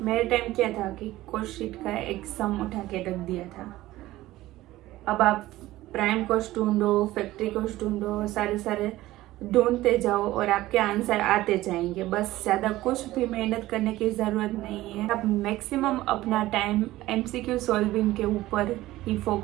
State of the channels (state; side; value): quieter; left; 16.5 dB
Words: मेरे टाइम क्या था कि कोस्ट शीट का एक सम उठा के रख दिया था. अब आप प्राइम कोस्ट ढूंढो, फैक्ट्री कोस्ट ढूंढो, सारे ढूंढते जाओ और आपके आंसर आते जाएंगे. बस ज़्यादा कुछ भी मेहनत करने की ज़रूरत नहीं है. आप मैक्सिमम अपना टाइम MCQ सॉल्विंग के ऊपर ही